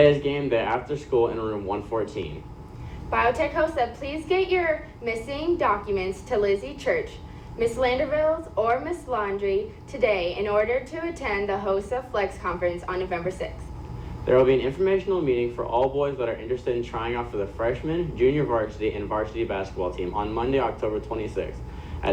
is game day after school in room 114. Biotech host said please get your missing documents to Lizzie Church, Miss Landerville's, or Miss Laundry today in order to attend the HOSA Flex Conference on November 6th. There will be an informational meeting for all boys that are interested in trying out for the freshman, junior varsity, and varsity basketball team on Monday, October 26th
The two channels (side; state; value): both; identical; correlation 1.00